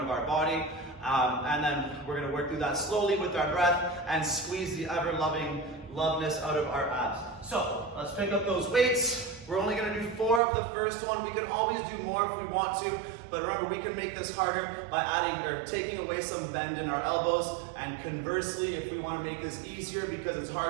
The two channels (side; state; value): left; drops out; at 10.4 s